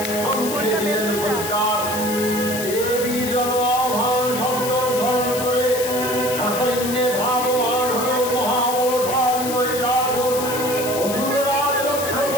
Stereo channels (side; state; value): left; noise; hiss, 7 dB below the sound